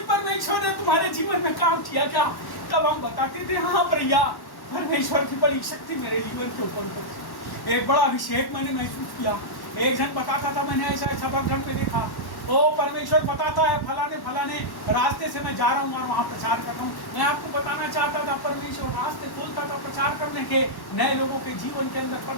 परमेश्वर ने तुम्हारे जीवन में काम किया क्या। तब हम बताते थे, हाँ भैया, परमेश्वर की बड़ी शक्ति मेरे जीवन के ऊपर, एक बड़ा अभिषेक मैंने महसूस किया। एक जन बताता था, मैंने ऐसा ऐसा बगल में देखा, वो परमेश्वर बताता है फलाने फलाने रास्ते से मैं जा रहा हूँ और वहाँ प्रचार कर रहा हूँ। मैं आपको बताना चाहता था, परमेश्वर रास्ते खोलता था प्रचार करने के, नए लोगों के जीवन के अंदर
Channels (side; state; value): right; late; 1.1 ms